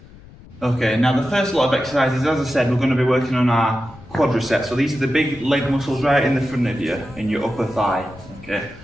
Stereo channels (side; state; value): left; noise; rumble, 21 dB below the sound